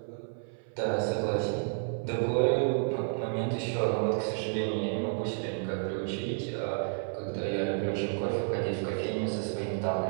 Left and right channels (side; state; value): left; silent; 56 dB below the other